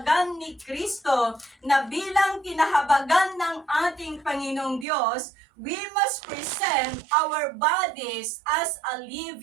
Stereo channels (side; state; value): left; drops out; at 4.9 s